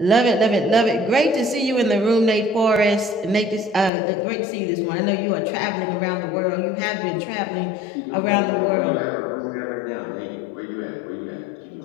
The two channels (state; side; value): drops out; right; at 3.9 s